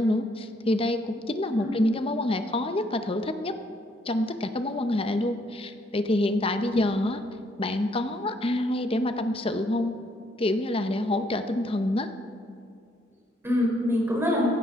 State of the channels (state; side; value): normal; both; correlation 0.69